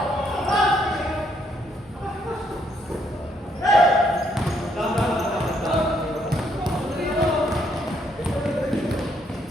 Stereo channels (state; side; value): normal; both; correlation 0.72